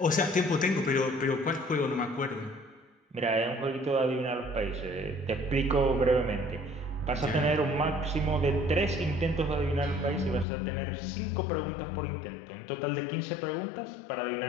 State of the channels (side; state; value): right; drops out; at 10.5 s